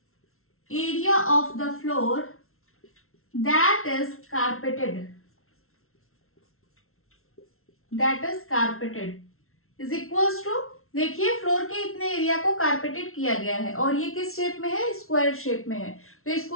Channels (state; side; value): late; right; 0.62 ms